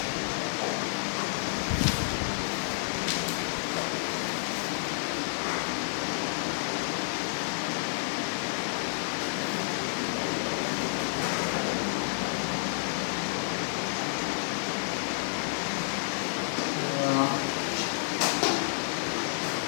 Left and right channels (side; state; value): right; silent; digital silence